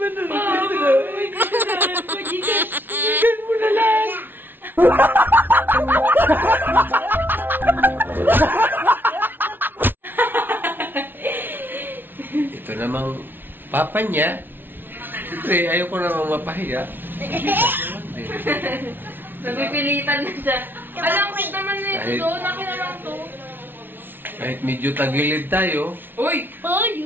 na. May kasalanan ko, Gcash. Bigyan mo na lang. harapan niya. Siyempre, ayaw ko namang mapahiya. Napipilitan na siya. Alam ko naman na ito. Akin na lang to. Kahit medyo tagilid tayo, Uy!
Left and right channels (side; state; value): left; late; 0.098 ms